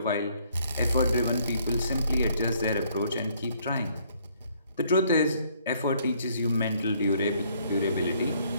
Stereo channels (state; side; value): inverted; both; correlation -0.65